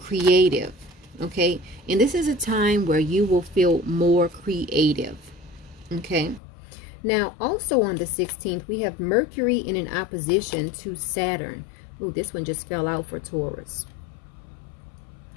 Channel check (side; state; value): right; drops out; at 6.4 s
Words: okay? And this is a time where you will feel more creative, okay? Now, also on the 16th, we have Mercury in an opposition to Saturn. Ooh, this one just fell out for Taurus.